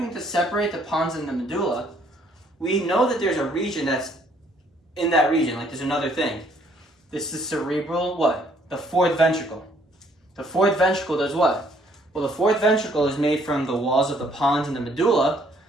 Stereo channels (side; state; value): both; normal; correlation 0.64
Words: to separate the pons and the medulla, we know that there's a region that's in that region, there's another thing. This is cerebral, what? The fourth ventricle. The fourth ventricle does what? Well, the fourth ventricle is made from the walls of the pons and the medulla,